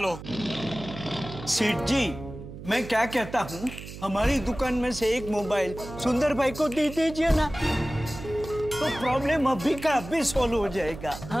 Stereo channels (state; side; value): noise; right; hum, 12 dB below the sound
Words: सेठ जी, मैं क्या कहता हूँ, हमारी दुकान में से एक मोबाइल सुंदर भाई को दे दीजिए ना, तो प्रॉब्लम अभी का अभी सॉल्व हो जाएगा।